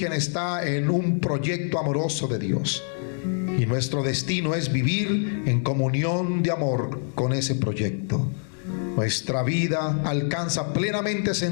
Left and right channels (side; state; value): right; silent; 60 dB below the other